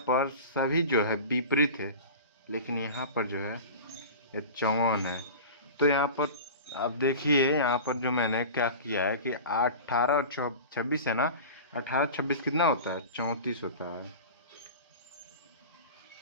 पर सभी जो है विपरीत है, लेकिन यहाँ पर जो है ये 54 है। तो यहाँ पर आप देखिए, यहाँ पर जो मैंने क्या किया है कि 18 और 26 है ना, 18 26 कितना होता है, 34 होता है।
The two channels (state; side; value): inverted; both; correlation -0.34